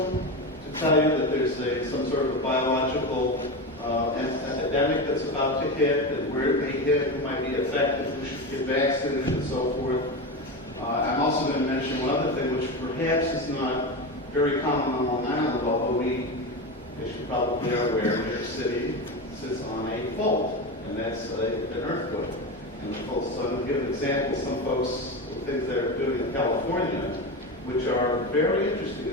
to tell you that there's some sort of a biological epidemic that's about to hit, and where it may hit, who might be affected, who should get vaccinated, and so forth. I'm also going to mention one other thing, which perhaps is not very common on Long Island, although they should probably be aware, New York City sits on a fault, and that's an earthquake. And of course, so to give an example, some folks, things they're doing in California, which are very interesting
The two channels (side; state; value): both; normal; correlation 0.20